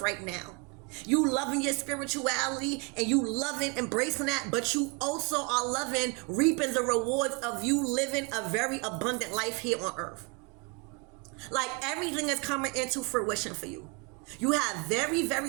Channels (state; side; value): quieter; left; 31.0 dB